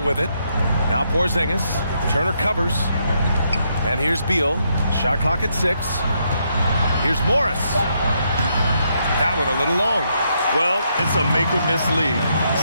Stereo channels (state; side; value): inverted; both; correlation -0.77